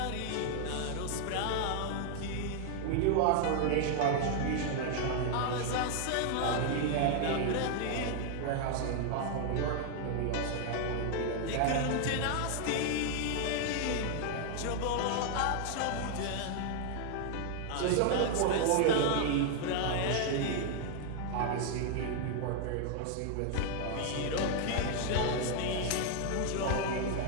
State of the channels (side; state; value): both; different; correlation 0.00